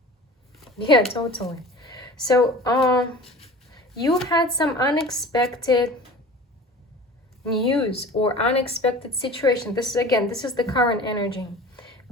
Yeah, totally. So, you had some unexpected news or unexpected situation. This is the current energy.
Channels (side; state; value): both; normal; correlation 0.40